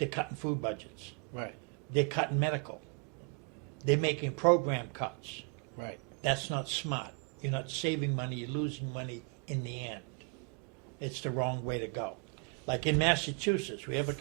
cutting food budgets. right, They're cutting medical. They're making program cuts. right. That's not smart. You're not saving money, you're losing money in the end. It's the wrong way to go. Like in Massachusetts, we have a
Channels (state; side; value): quieter; left; 32.5 dB